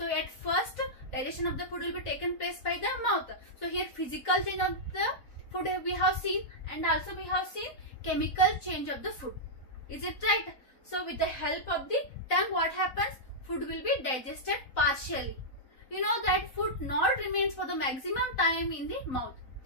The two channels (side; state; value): right; late; 4.0 ms